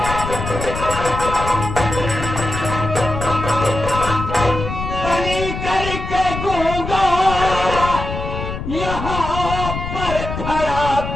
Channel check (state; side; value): noise; left; rumble, 6 dB below the sound